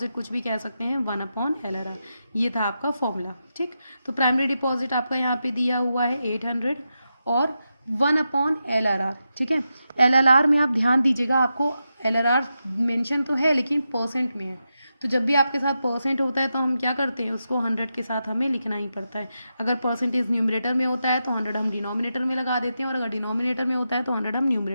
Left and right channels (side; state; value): both; inverted; correlation -0.88